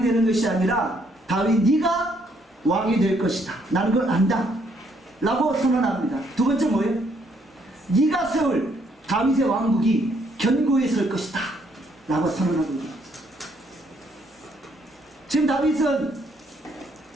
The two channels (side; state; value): both; normal; correlation 0.70